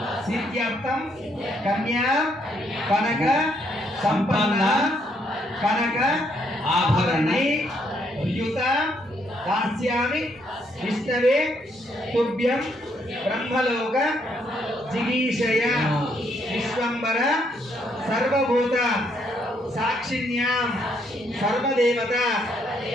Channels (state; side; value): normal; both; correlation 0.72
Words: सिद्ध्यर्थं कन्या कनक संपन्न कनक आभरणे युत दास्यामि विष्णवे तुभ्यं ब्रह्मलोक जिगीषय विश्वंबर सर्वभूत साक्षिण्यां सर्वदेवता